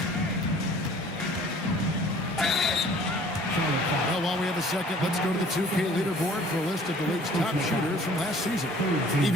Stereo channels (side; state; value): both; normal; correlation 0.52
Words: Well, while we have a second, let's go to the 2K leaderboard for a list of the league's top shooters from last season.